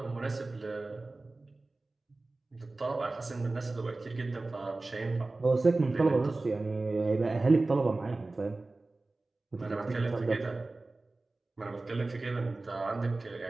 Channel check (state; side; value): quieter; left; 3.2 dB